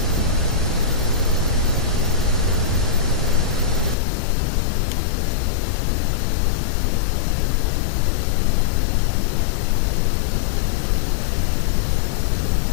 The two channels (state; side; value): drops out; right; at 4.0 s